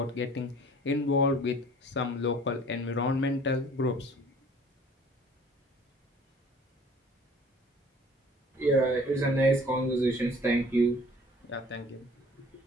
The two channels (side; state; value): both; normal; correlation 0.50